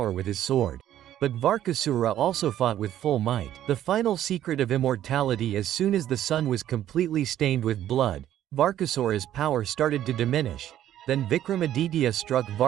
with his sword. But Varkhasura also fought with full might. The final secret of immortality: as soon as the sun was completely stained with blood, Varkhasur's power started to diminish. Then Vikramaditya struck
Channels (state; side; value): quieter; left; 11.8 dB